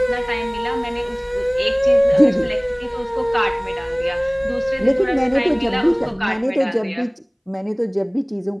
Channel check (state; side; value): identical; both; correlation 1.00